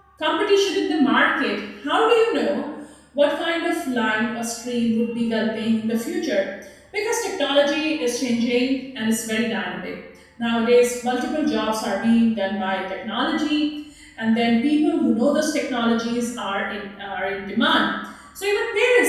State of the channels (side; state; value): both; identical; correlation 1.00